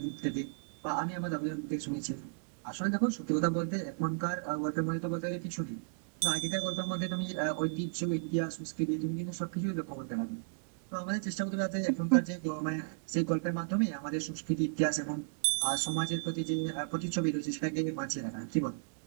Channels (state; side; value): silent; left; digital silence